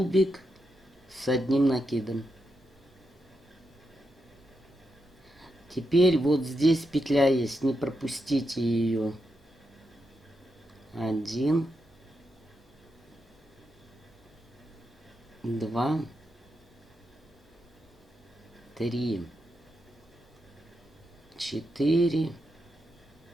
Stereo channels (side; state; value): both; normal; correlation 0.85